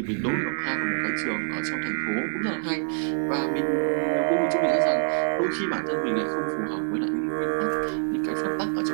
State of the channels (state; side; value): silent; left; digital silence